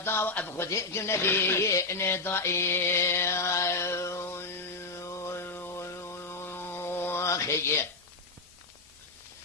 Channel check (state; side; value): quieter; right; 3.6 dB